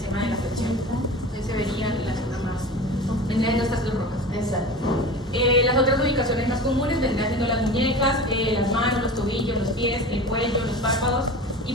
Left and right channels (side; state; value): both; normal; correlation 0.34